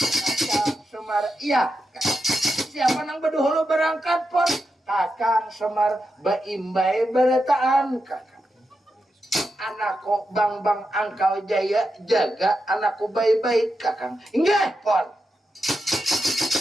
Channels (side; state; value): both; normal; correlation 0.87